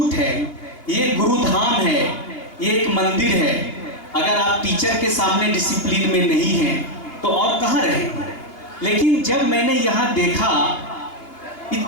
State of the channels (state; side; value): late; right; 2.8 ms